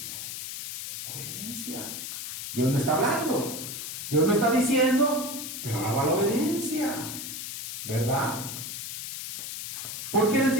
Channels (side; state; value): left; noise; hiss, 6 dB below the sound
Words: Obediencia. Dios no está hablando, Dios no está diciendo, pero ahora va la obediencia, ¿verdad? ¿Por qué les